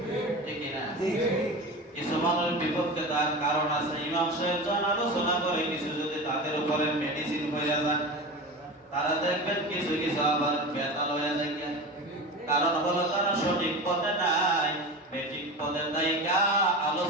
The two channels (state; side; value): normal; both; correlation 0.29